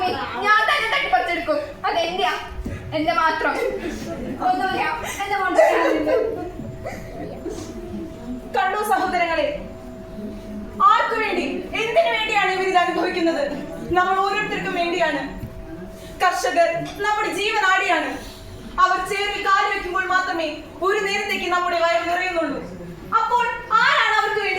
ഞാൻ തന്നെ തട്ടിപ്പറിച്ചെടുക്കും. അതെന്റെയാ, എന്റെ മാത്രം. ഒന്നുമില്ല, എന്റെ മോളുടെ കണ്ടു സഹോദരങ്ങളെ, ആർക്കു വേണ്ടി എന്തിനു വേണ്ടിയാണ് ഇവർ ഇത് അനുഭവിക്കുന്നത്? നമ്മൾ ഓരോരുത്തർക്കും വേണ്ടിയാണ്. കർഷകർ നമ്മുടെ ജീവനാടിയാണ്. അവർ ചേർന്ന് കാല് വെക്കുമ്പോൾ മാത്രമേ ഒരു നേരത്തേക്ക് നമ്മുടെ വയർ നിറയുന്നുള്ളൂ. അപ്പോൾ ആരാണ് അവർക്ക്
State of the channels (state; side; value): identical; both; correlation 1.00